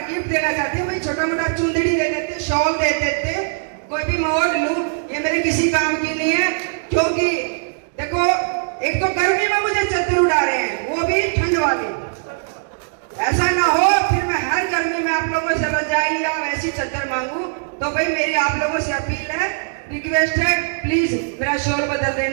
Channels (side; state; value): left; silent; digital silence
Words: गिफ्ट देना चाहते हैं, भाई छोटा मोटा चुंदड़ी दे देते, शॉल दे देते, कोई भी मोड़ लूं, ये मेरे किसी काम की नहीं है। क्योंकि देखो, एक तो गर्मी में मुझे चद्दर उड़ा रहे हैं, वो भी ठंड वाली। ऐसा ना हो फिर मैं हर गर्मी में आप लोगों से रजाई या वैसी चद्दर मांगू। तो भाई मेरी आप लोगों से अपील है, रिक्वेस्ट है, प्लीज मेरा शोल बदल